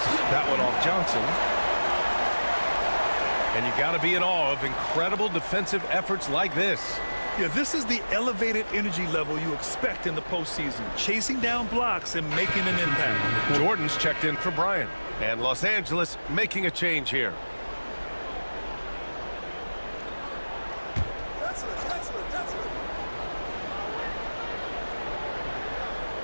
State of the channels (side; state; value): both; inverted; correlation -1.00